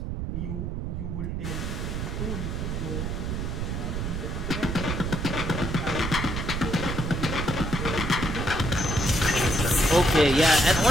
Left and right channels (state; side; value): noise; right; rumble, 2 dB below the sound